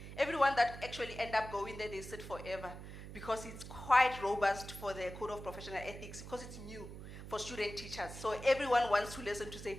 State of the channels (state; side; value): noise; right; hum, 12 dB below the sound